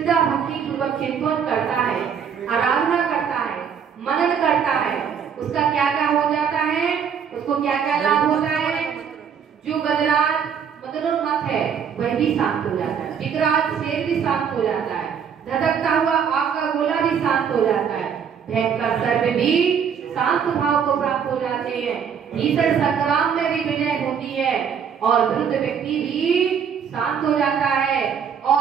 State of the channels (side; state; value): left; quieter; 7.4 dB